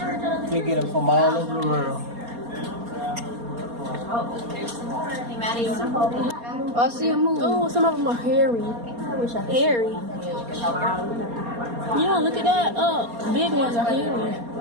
out of the. They get them from all over the world. Hey, Maddie, you want to hold it? Oh, I see a move. Oh, some of them are hairy. I wish I could. Hairy. Yeah, look at that. Big ones are hairy.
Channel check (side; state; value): left; late; 4.3 ms